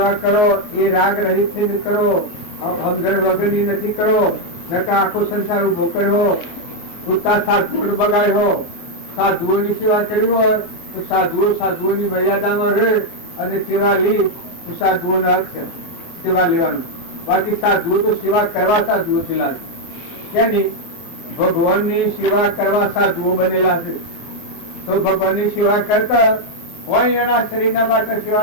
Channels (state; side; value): late; right; 24 ms